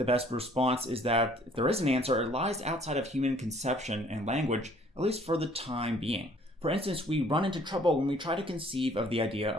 best response is that if there is an answer, it lies outside of human conception and language, at least for the time being. For instance, we run into trouble when we try to conceive of the idea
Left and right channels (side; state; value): both; normal; correlation 0.58